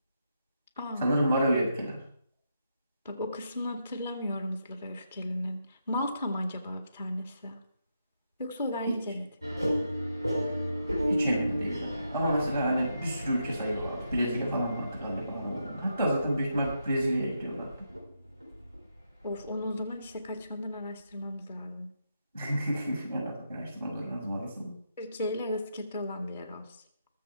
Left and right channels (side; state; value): both; inverted; correlation -0.82